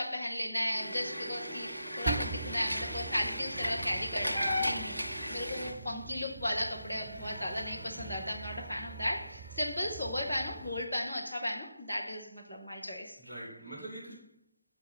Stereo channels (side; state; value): both; inverted; correlation -0.86